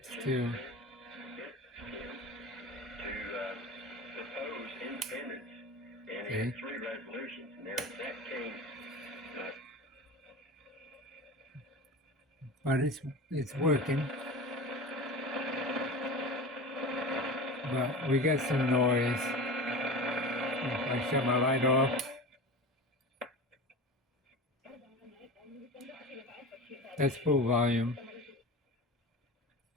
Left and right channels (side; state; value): both; normal; correlation 0.31